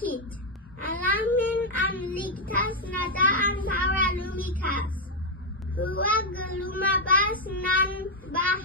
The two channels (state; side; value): normal; both; correlation 0.00